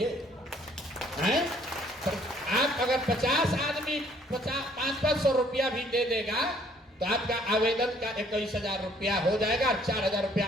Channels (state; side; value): normal; both; correlation 0.62